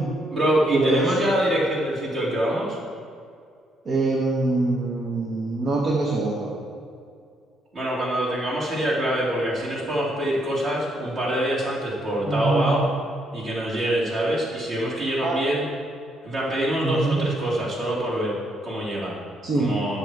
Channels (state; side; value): normal; both; correlation 0.74